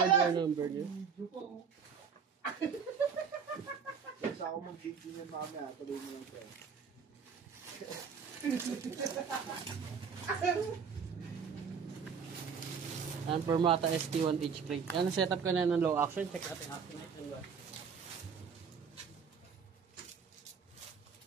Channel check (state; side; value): quieter; left; 6.3 dB